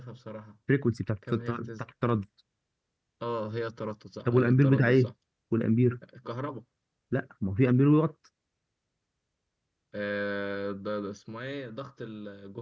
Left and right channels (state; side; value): identical; both; correlation 1.00